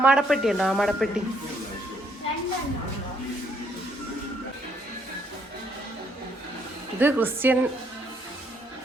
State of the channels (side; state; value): both; normal; correlation 0.70